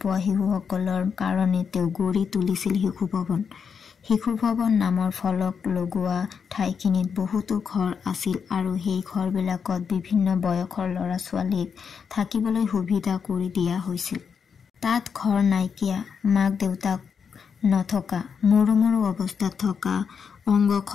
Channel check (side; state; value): right; quieter; 6.4 dB